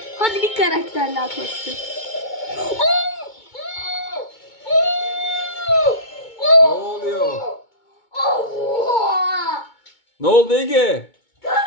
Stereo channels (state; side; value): late; right; 2.2 ms